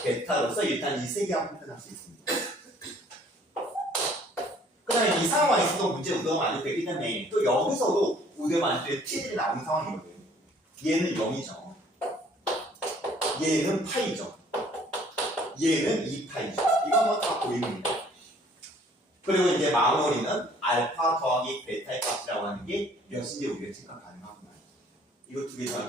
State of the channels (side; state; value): both; normal; correlation 0.57